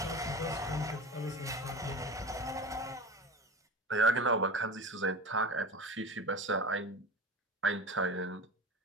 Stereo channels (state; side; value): normal; both; correlation 0.30